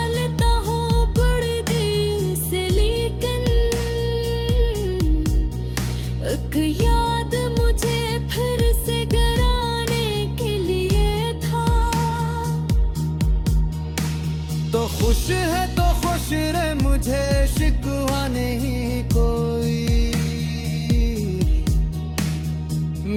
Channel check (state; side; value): identical; both; correlation 1.00